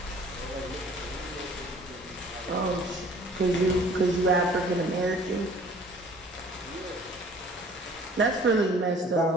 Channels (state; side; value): normal; both; correlation 0.52